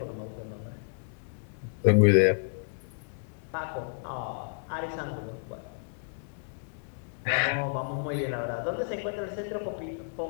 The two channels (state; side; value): silent; right; digital silence